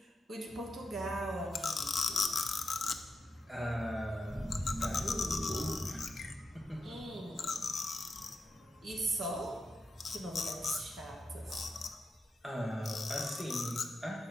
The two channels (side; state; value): both; normal; correlation 0.87